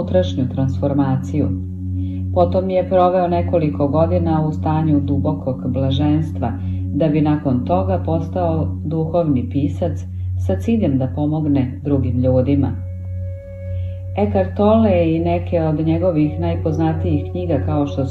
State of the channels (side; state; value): both; identical; correlation 1.00